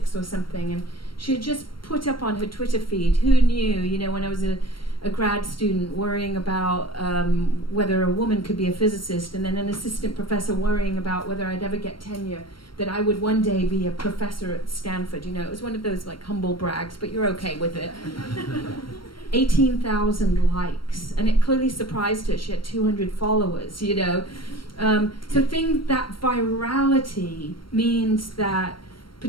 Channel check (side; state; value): right; late; 0.73 ms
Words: or something, and she had just put up on her Twitter feed, who knew, you know, when I was a grad student worrying about whether a woman could be a physicist, and then an assistant professor worrying about whether I'd ever get tenure, that I would one day be a professor at Stanford. You know, it was one of those like humble brags, but you're okay with it. 18,000 likes, and it clearly surprised her. She had 200 followers, you know. So that virality means that,